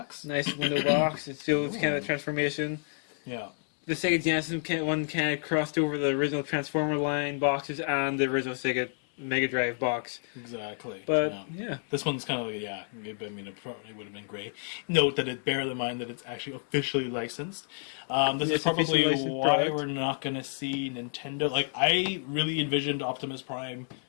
Nice window box. It shows kind of a transformation. Yeah. The Sega Genesis one kind of crossed over the original Transformer line boxes and the original Sega Mega Drive box. Exactly. But yeah. This one's kind of like, yeah, I mean, it probably would have been great. Note that bear in mind that it's actually officially licensed. This is probably why we're not going to see Nintendo. Like, I really envisioned Optimus Prime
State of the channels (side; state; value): right; silent; 58 dB below the other